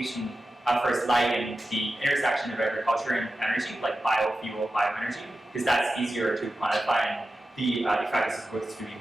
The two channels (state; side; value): normal; both; correlation 0.93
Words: efforts lie in the intersection of agriculture and energy, like biofuel, bioenergy, because that's easier to quantify and the effect is supposed to be